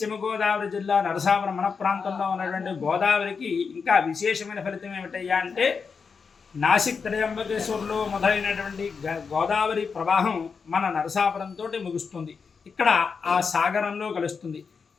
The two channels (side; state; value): right; quieter; 5.5 dB